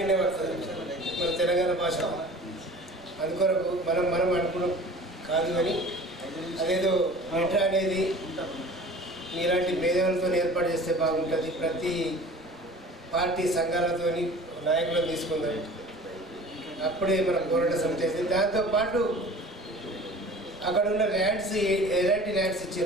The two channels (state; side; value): normal; both; correlation 0.43